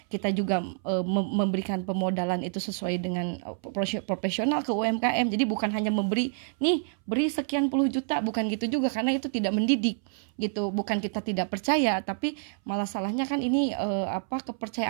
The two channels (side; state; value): left; silent; 59 dB below the other